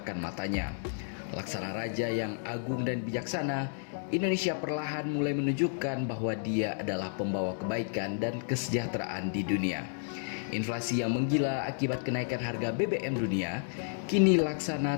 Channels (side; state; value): right; silent; digital silence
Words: matanya. Laksana raja yang agung dan bijaksana, Indonesia perlahan mulai menunjukkan bahwa dia adalah pembawa kebaikan dan kesejahteraan di dunia. Inflasi yang menggila akibat kenaikan harga BBM dunia, kini